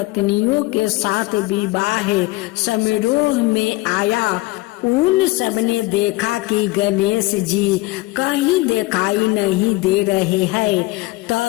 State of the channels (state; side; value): quieter; right; 20.5 dB